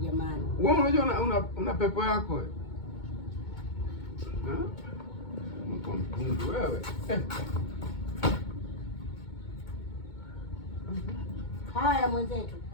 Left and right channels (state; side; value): late; right; 2.2 ms